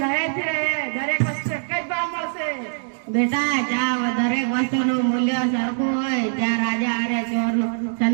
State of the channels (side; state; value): left; silent; digital silence